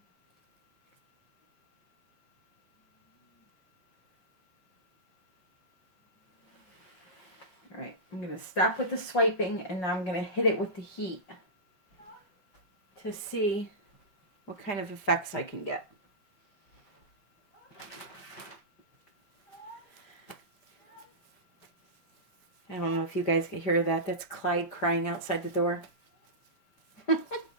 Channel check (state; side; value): late; right; 5.5 ms